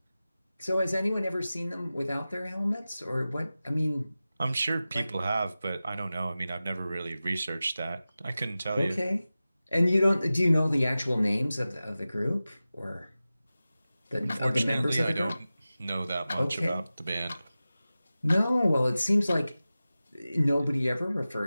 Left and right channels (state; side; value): inverted; both; correlation -0.95